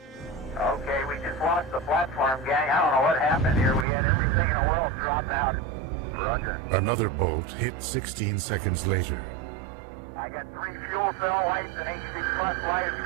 Okay, we just lost the platform, gang. I don't know what happened here. We had everything in the world drop out. Roger. Another bolt hit 16 seconds later. I got 3 fuel cell lights and AC bus light,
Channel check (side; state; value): left; drops out; at 3.9 s